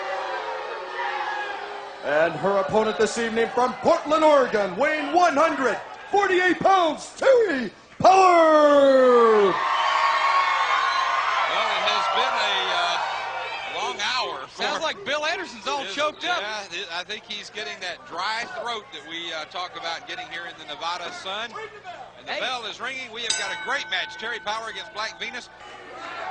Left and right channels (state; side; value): identical; both; correlation 1.00